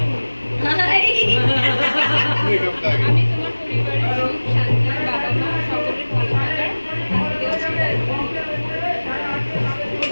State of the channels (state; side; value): inverted; both; correlation -1.00